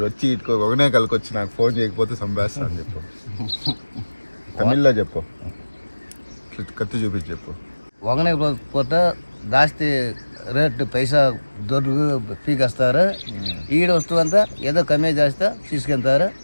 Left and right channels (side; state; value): both; inverted; correlation -1.00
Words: వచ్చి ఇటుకో ఒకనే కలికొచ్చి నాకు ఫోన్ చేయకపోతే చంపేస్తాను చెప్పు. తమిళ్లో చెప్పు, కత్తి చూపించి చెప్పు. ఒకనే పోతే జాస్తి రేట్ పైసా దొరుకు పీకేస్తారు. ఈడ వస్తువు అంతా ఏదో కమ్మే చేస్తే తీసుకెళ్తారు.